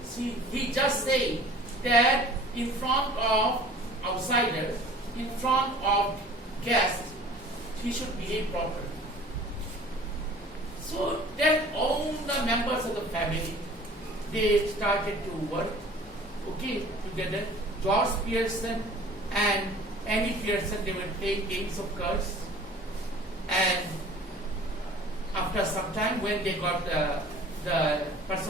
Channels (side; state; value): both; normal; correlation 0.47